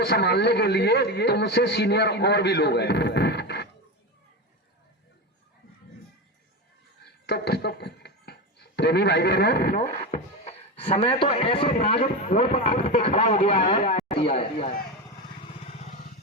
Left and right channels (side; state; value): both; normal; correlation 0.18